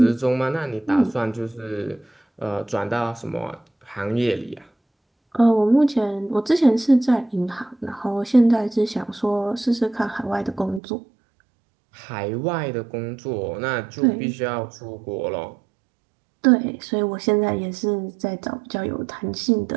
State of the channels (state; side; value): drops out; left; at 10.8 s